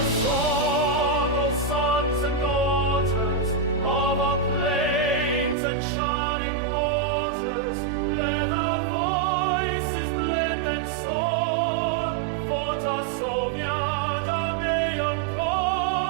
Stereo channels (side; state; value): left; drops out; at 5.6 s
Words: song, O sons and daughters, of our plains and shining waters. Let our voices blend and soar, for Tarsovia, Dameon